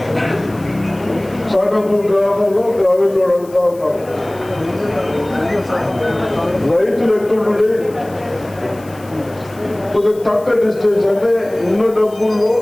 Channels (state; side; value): noise; left; hiss, 24 dB below the sound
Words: సాగపూర్ గ్రామంలో గ్రామీణ అడుగుతా ఉన్నారు. రైతులు ఎక్కడుండి కొద్దిగా తక్కువ డిస్టెన్స్ అంటే ఉన్న డబ్బుల్లో